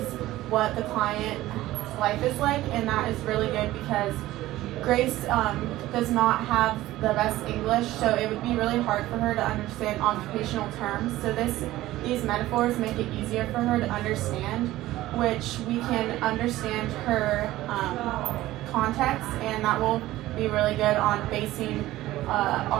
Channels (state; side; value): quieter; left; 16.1 dB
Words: what the client's life is like, and that is really good because Grace does not have the best English, so it would be really hard for her to understand occupational terms. So these metaphors make it easier for her to understand, which we can understand her context, and that will be really good on basing